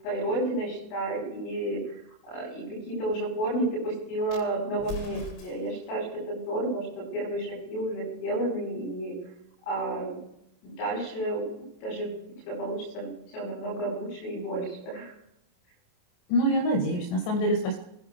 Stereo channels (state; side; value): late; right; 28 ms